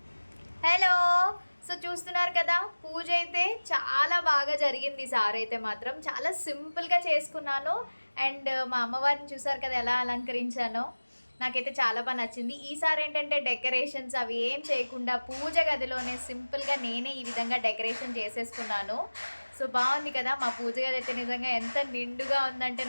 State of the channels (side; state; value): both; inverted; correlation -1.00